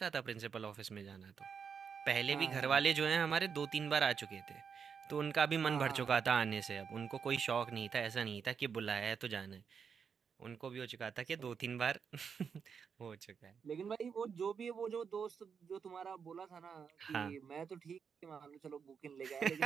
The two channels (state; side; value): quieter; left; 6.5 dB